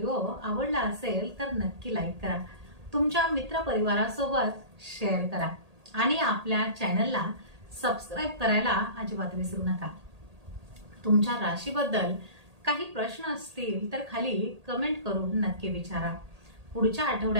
आवडला असेल तर नक्की लाईक करा, तुमच्या मित्रपरिवारासोबत शेअर करा आणि आपल्या चॅनलला सबस्क्राईब करायला अजिबात विसरू नका. तुमच्या राशीबद्दल काही प्रश्न असतील तर खाली कमेंट करून नक्की विचारा. पुढच्या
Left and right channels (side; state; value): left; late; 1.8 ms